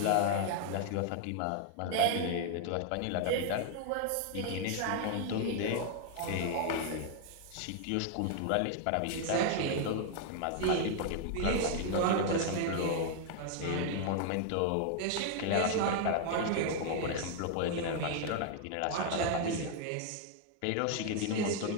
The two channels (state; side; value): different; both; correlation 0.00